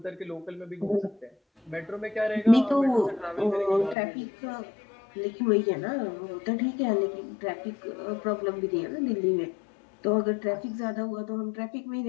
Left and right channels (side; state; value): right; drops out; at 4.0 s